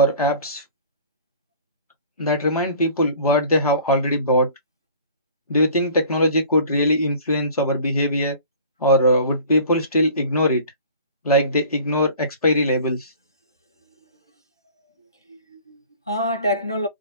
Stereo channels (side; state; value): both; inverted; correlation -0.47